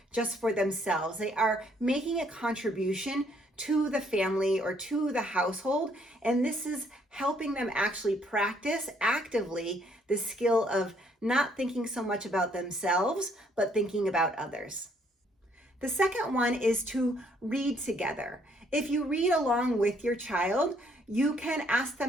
just for themselves. They are making a contribution to the family or to the household. And this is helping them actually practice actively the skill of not thinking so much about themselves, but thinking about others. The second one is to read together. If you read along with your child, you can ask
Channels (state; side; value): normal; both; correlation 0.67